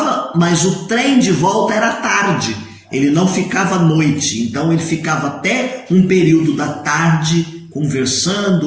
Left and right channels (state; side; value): identical; both; correlation 1.00